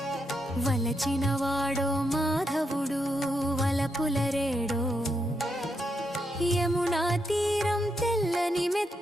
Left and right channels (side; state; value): both; normal; correlation 0.81